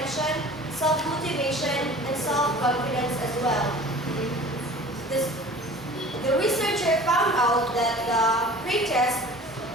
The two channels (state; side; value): normal; both; correlation 0.43